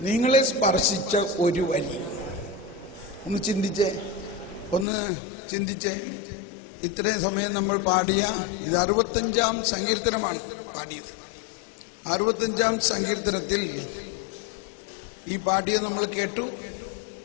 നിങ്ങളെ സ്പർശിച്ച ഒരു വരി ഒന്ന് ചിന്തിച്ചേ. ഇത്രയും സമയം നമ്മൾ പാടിയ ഇത് 65-ാം സങ്കീർത്തനമാണ് പാടിയത്. 65-ാം സങ്കീർത്തനത്തിൽ ഈ പാടിയ നമ്മൾ കേട്ടു.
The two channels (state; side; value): drops out; right; at 4.9 s